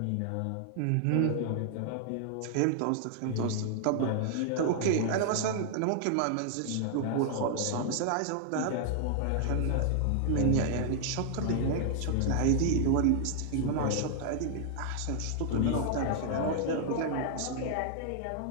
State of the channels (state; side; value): different; both; correlation 0.00